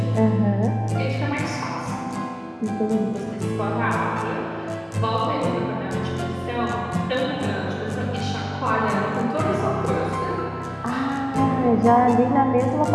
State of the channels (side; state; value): both; identical; correlation 1.00